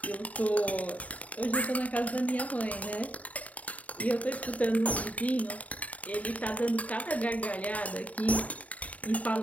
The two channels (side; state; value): right; late; 0.069 ms